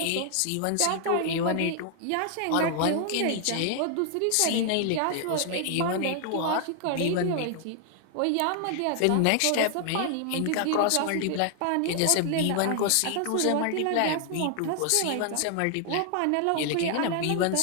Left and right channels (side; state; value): both; different; correlation 0.00